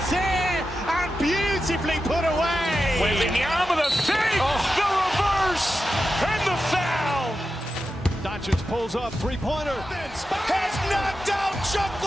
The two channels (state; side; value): normal; both; correlation 0.91